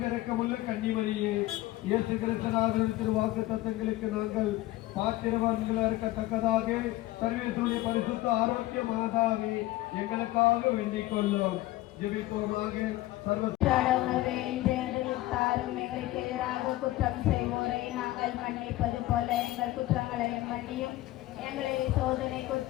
கன்னிமரியே, இயேசு கிறிஸ்துநாதருடைய திருவாக்கு தத்தங்களுக்கு நாங்கள் பாத்திரவான்களாக இருக்கத்தக்கதாக சர்வேஸ்வருடைய பரிசுத்த ஆரோக்கிய மாதாவே எங்களுக்காக வேண்டிக் கொள்ளும். ஜெபிப்போமாக. எங்களுக்கு எதிராக குற்றம் செய்வோரை நாங்கள் மன்னிப்பது போல எங்கள் குற்றங்களையும் மன்னியும், எங்களை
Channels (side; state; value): right; quieter; 16.9 dB